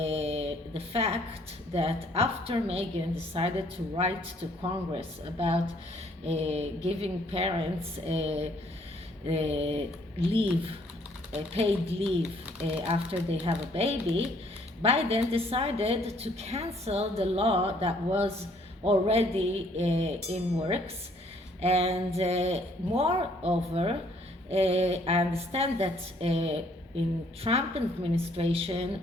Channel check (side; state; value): both; normal; correlation 0.63